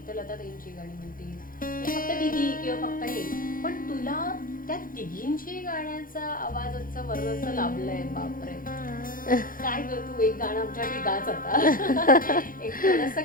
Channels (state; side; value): late; right; 0.40 ms